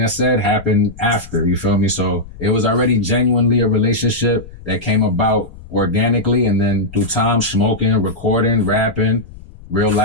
I said happened after, you feel me? So it was already genuinely a relationship that came about organically, and then through time, smoking, recording, rapping, real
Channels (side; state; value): left; noise; rumble, 18 dB below the sound